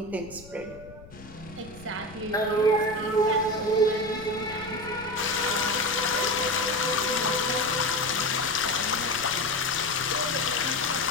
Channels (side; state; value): left; noise; rumble, 19 dB below the sound